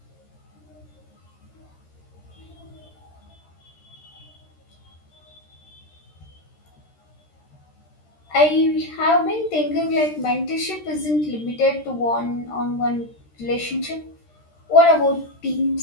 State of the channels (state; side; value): late; right; 13 ms